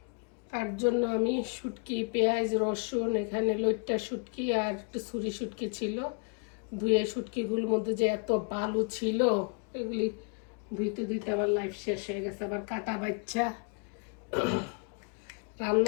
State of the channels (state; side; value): quieter; right; 38.6 dB